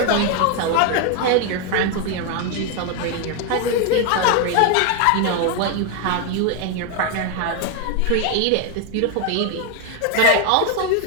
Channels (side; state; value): both; different; correlation 0.01